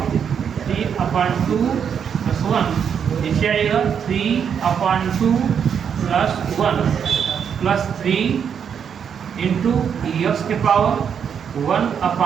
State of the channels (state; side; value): quieter; left; 7.6 dB